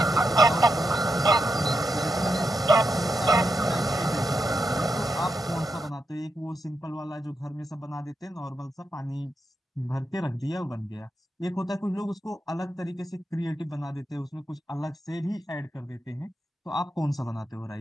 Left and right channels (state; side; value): normal; both; correlation 0.85